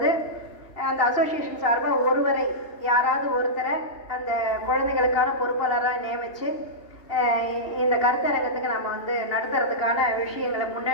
அந்த அசோசியேஷன் சார்பாக ஒருவரை, யாராவது ஒருத்தரை அந்த குழந்தைகளுக்கான பொறுப்பாளராக நியமித்து இந்த கருத்தரங்கத்துக்கு நம்ம வந்து நடத்துறதுக்கான விஷயங்களை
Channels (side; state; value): right; late; 2.9 ms